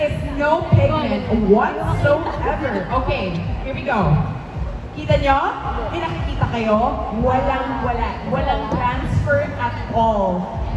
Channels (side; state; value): both; identical; correlation 1.00